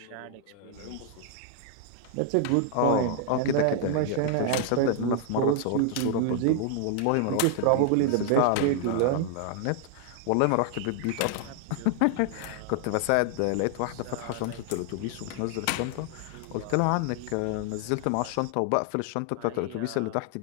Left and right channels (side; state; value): both; different; correlation 0.00